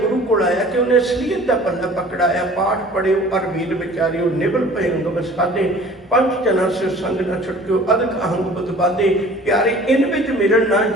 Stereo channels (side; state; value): both; normal; correlation 0.47